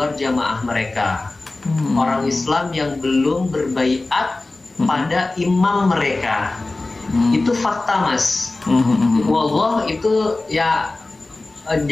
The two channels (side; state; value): right; quieter; 3.1 dB